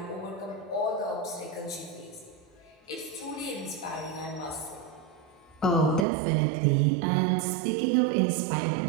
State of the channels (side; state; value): left; drops out; at 6.1 s